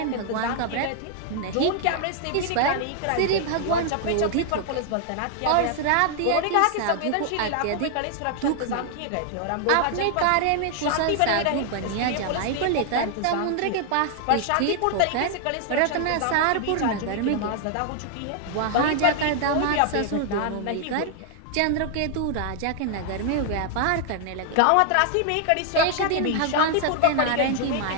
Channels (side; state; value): both; different; correlation 0.00